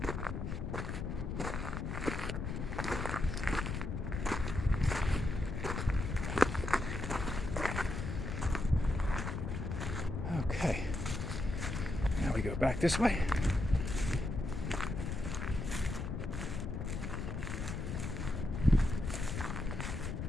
Okay, now we go back this way.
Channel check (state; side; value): noise; left; rumble, 3 dB below the sound